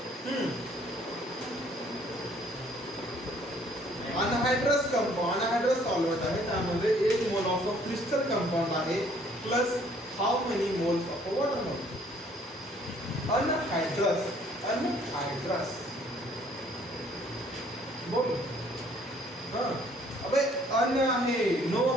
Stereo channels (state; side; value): normal; both; correlation 0.61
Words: Anhydrous compound, anhydrous solvent आहे, त्यामध्ये 1 मोल ऑफ क्रिस्टल कंपाऊंड आहे plus how many moles of water molecule. Anhydrous बोल. अबे अन आहे, नो